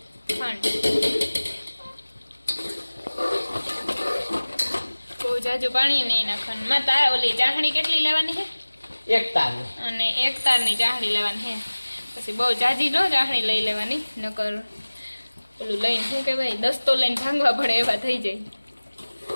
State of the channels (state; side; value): inverted; both; correlation -1.00